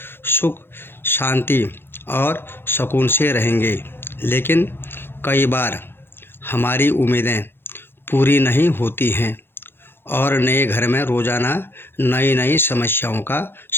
सुख शांति और सुकून से रहेंगे। लेकिन कई बार हमारी उम्मीदें पूरी नहीं होती हैं और नए घर में रोज़ाना नई नई समस्याओं का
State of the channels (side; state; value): right; late; 0.10 ms